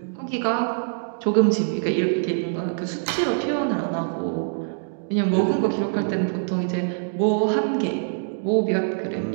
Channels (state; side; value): silent; left; digital silence